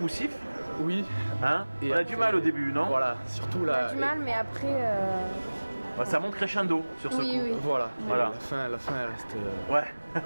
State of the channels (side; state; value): both; inverted; correlation -1.00